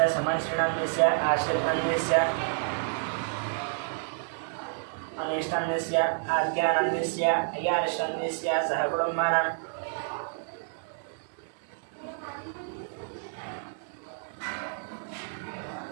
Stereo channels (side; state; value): left; silent; digital silence